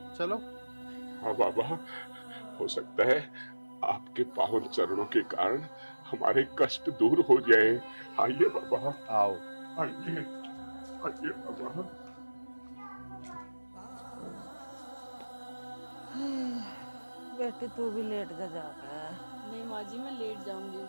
चलो। हाँ बाबा, हो सकता है आपके पावन चरणों के कारण हमारे कष्ट दूर हो जाए। आइए बाबा, आओ। आइए, आइए बाबा। बेटी तू भी लेट जा जाकर। नहीं माँ जी, मैं लेट जाऊंगी।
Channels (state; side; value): inverted; both; correlation -1.00